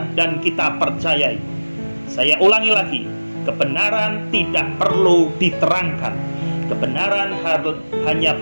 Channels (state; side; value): inverted; both; correlation -1.00